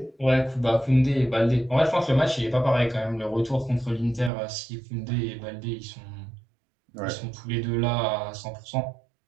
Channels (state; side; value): drops out; left; at 4.3 s